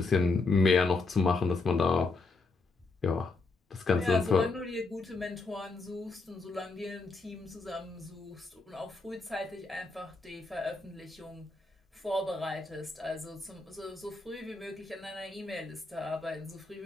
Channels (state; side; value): quieter; right; 3.6 dB